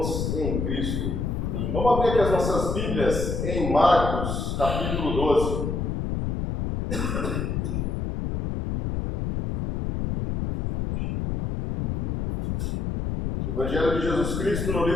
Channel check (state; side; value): noise; left; rumble, 2 dB below the sound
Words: em Cristo. Vamos abrir aqui as nossas Bíblias em Marcos, capítulo 12. Evangelho de Jesus Cristo no